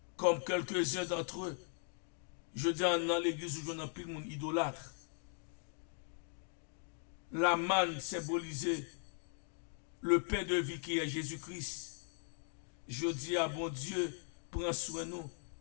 comme quelques-uns d'entre eux. Je dis dans l'église où j'en ai pile mon idolâtre. La manne symbolisait le pain de vie qui est Jésus-Christ. Je dis à bon Dieu, prends soin de nous,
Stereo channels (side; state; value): right; silent; 52 dB below the other